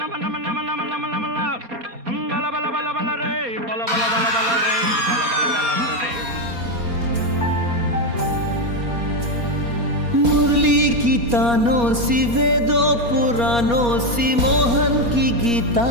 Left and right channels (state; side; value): late; left; 4.2 ms